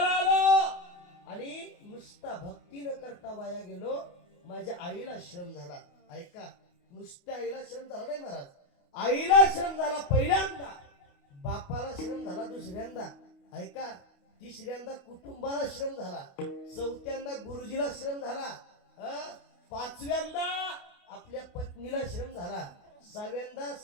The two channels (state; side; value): late; right; 28 ms